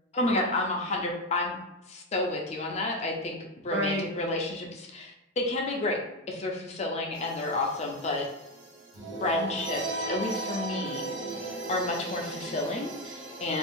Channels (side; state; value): both; normal; correlation 0.11